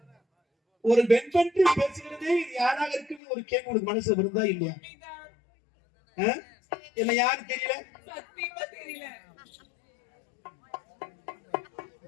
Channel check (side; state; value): right; drops out; at 3.2 s